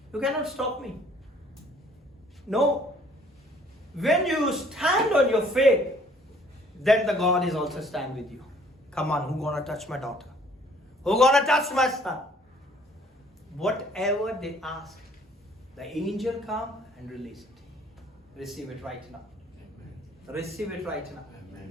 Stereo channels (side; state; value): both; normal; correlation 0.59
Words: You cannot stop me. No. When you stand on your faith, then the God is also stand with you. Come on, who gonna touch my daughter? Who gonna touch my son? whatever they ask, the angel come and release it. Receive it right now. Receive it right now.